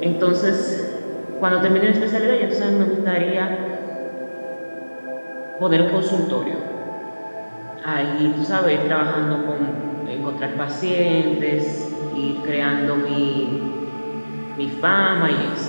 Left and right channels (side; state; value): both; inverted; correlation -1.00